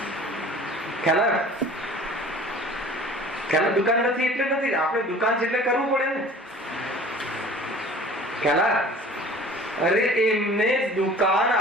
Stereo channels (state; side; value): normal; both; correlation 0.45